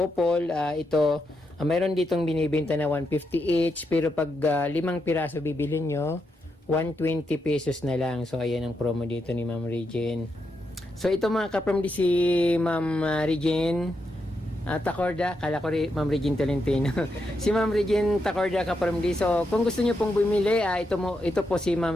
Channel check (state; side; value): normal; both; correlation 0.83